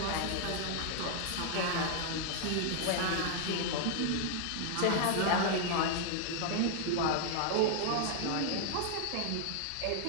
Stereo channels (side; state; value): both; different; correlation 0.00